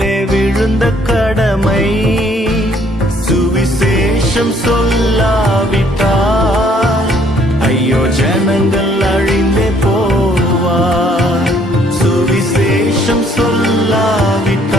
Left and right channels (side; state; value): both; normal; correlation 0.63